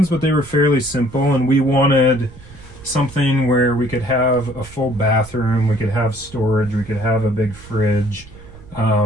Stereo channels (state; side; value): noise; right; rumble, 20 dB below the sound